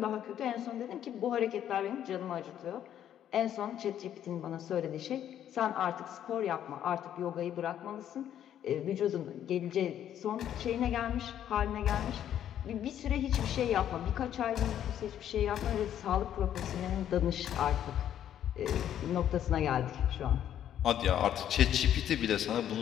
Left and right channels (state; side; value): quieter; right; 10.5 dB